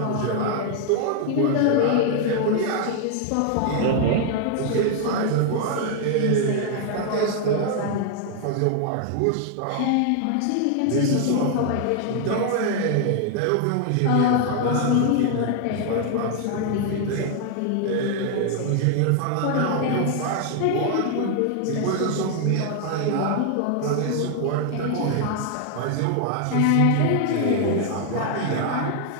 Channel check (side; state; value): both; different; correlation 0.00